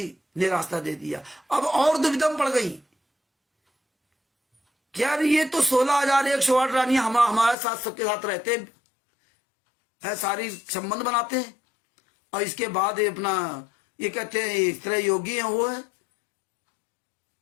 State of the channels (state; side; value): drops out; right; at 7.6 s